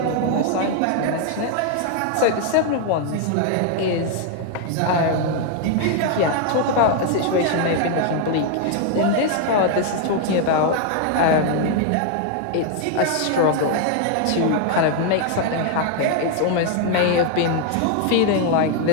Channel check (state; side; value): different; both; correlation 0.00